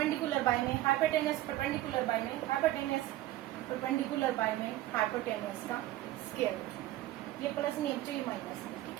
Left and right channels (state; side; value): quieter; left; 15.3 dB